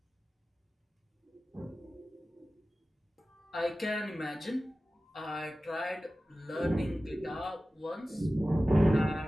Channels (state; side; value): normal; both; correlation 0.96